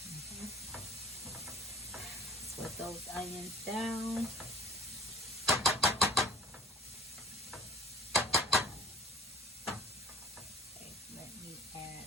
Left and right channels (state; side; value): normal; both; correlation 0.46